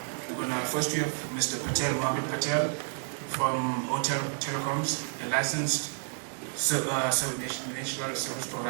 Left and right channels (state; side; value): silent; left; 58 dB below the other